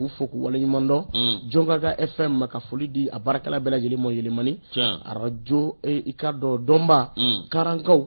fo k'u waleɲuman dɔn Jɔnkaga FM ka foli di a baarakɛla bɛɛ lajɛlen mɔ Yɛlɛmani arajo i ka dɔn Dɔnba Karankaw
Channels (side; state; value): both; inverted; correlation -1.00